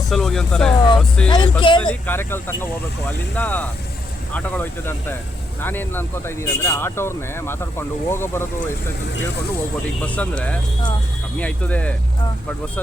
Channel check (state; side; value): normal; both; correlation 0.79